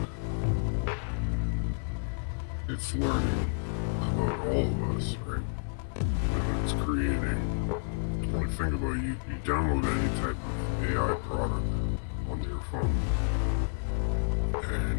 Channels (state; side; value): silent; right; 58 dB below the other